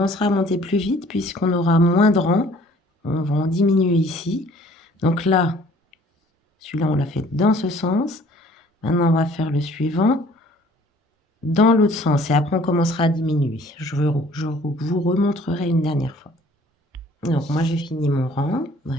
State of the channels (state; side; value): normal; both; correlation 0.55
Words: à monter plus vite puisqu'on aura moins de rangs. On va en diminuer ici. Donc là, celui-là, on l'a fait dans ce sens. Maintenant, on va faire le suivant dans l'autre sens. Et après, on commencera à diminuer. Je vous remontrerai une dernière fois. Donc, moi, j'ai fini mon rang.